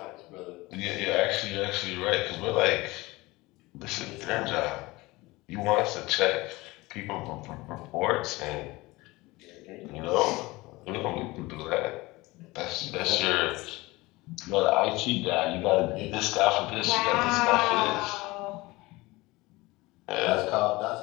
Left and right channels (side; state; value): right; quieter; 21.4 dB